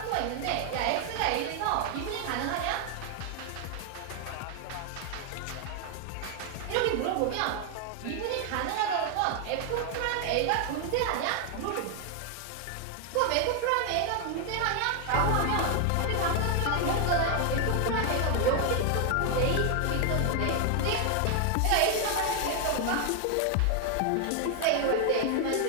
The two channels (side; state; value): both; different; correlation 0.00